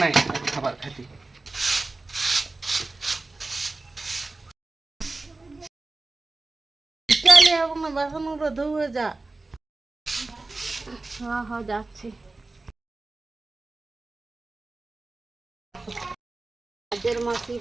নাই খাবার খাইতে। চলে এবং বাসনগুলো ধুয়ে যা। হ্যাঁ হ্যাঁ যাচ্ছি। কাজের মাসি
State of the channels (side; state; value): left; quieter; 3.3 dB